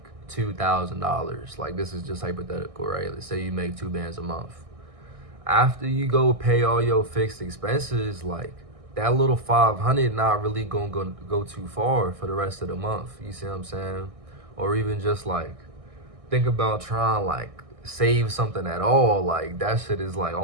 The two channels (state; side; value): late; left; 1.6 ms